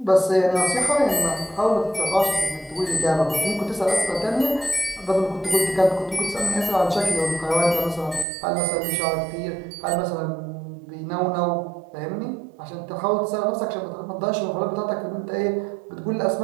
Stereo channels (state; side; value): drops out; left; at 8.2 s